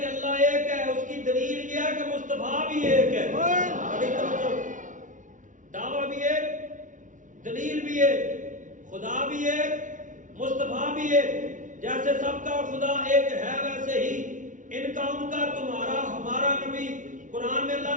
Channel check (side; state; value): left; late; 0.37 ms